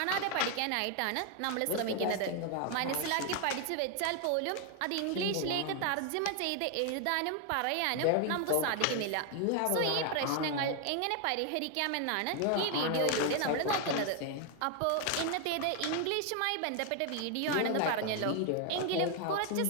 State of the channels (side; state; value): both; different; correlation 0.01